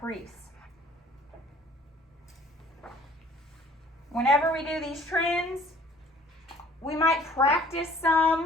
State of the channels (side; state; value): both; normal; correlation 0.54